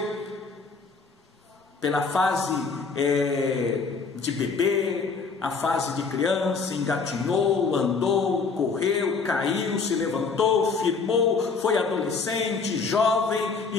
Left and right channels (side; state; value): right; quieter; 4.8 dB